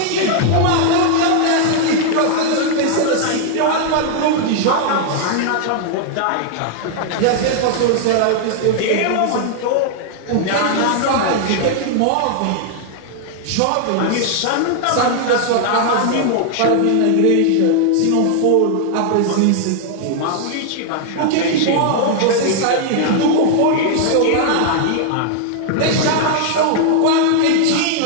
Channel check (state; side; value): different; both; correlation -0.01